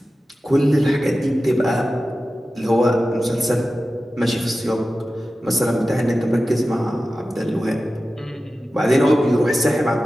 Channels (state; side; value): normal; both; correlation 0.94